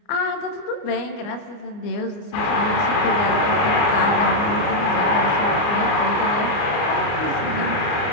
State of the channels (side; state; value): right; late; 29 ms